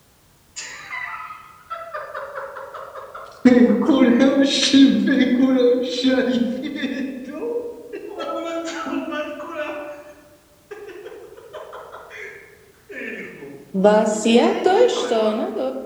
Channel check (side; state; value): both; identical; correlation 1.00